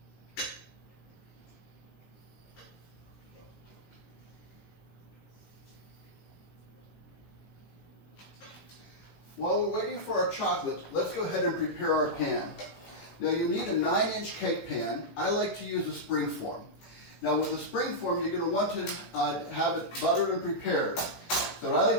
While we're waiting for our chocolate, let's go ahead and prepare our pan. Now you need a 9-inch cake pan. I like to use a spring form. Now with a spring form, you're going to want to have it buttered and prepared. So what I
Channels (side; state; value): right; late; 18 ms